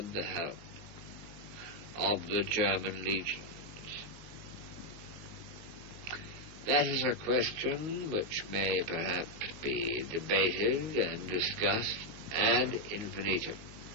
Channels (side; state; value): left; late; 19 ms